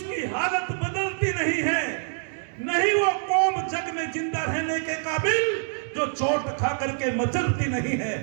हालत बदलती नहीं है, नहीं वो कौम जग में जिंदा रहने के काबिल जो चोट खा करके मचलती नहीं है,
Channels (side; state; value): left; silent; digital silence